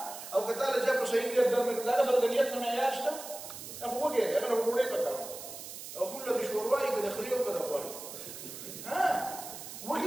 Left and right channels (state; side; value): noise; right; hiss, 11 dB below the sound